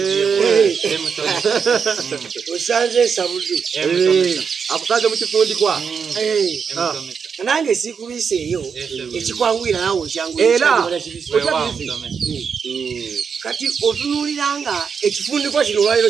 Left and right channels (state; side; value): quieter; left; 6.3 dB